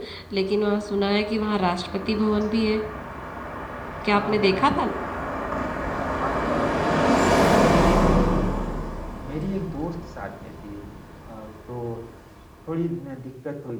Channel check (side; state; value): both; identical; correlation 1.00